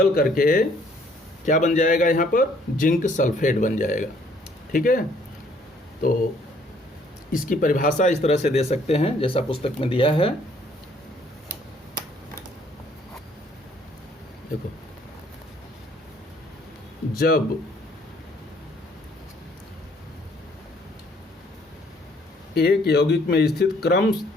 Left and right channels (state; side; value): normal; both; correlation 0.63